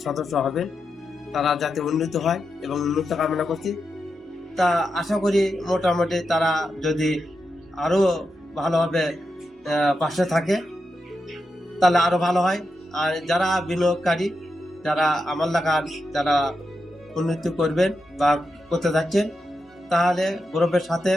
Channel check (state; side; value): normal; both; correlation 0.87